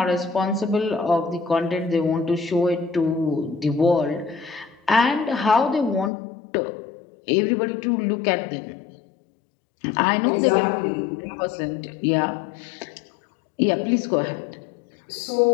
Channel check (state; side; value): drops out; right; at 6.1 s